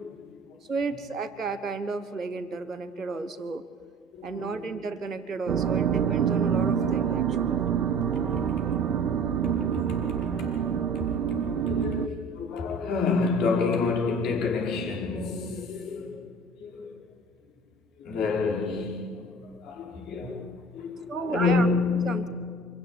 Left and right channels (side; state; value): both; normal; correlation 0.44